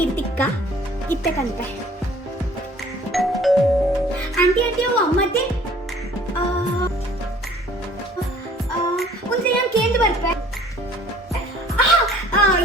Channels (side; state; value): both; normal; correlation 0.54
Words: ತಿಕ್ಕ ಇತ್ತಕಂತೆ ಆಂಟಿ ಆಂಟಿ ಅವು ಅಮ್ಮತ್ತೆ ಒಂದ್ಸಲ ಕೇಂದ್ರ ಬರ್ಪೆ